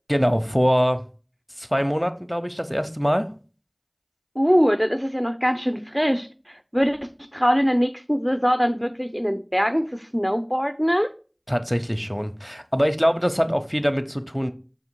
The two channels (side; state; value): both; identical; correlation 1.00